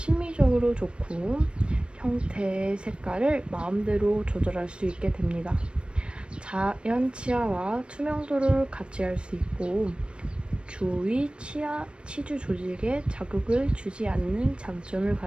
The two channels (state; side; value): late; left; 0.057 ms